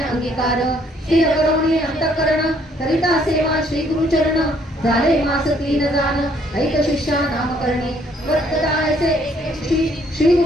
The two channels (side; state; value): both; normal; correlation 0.65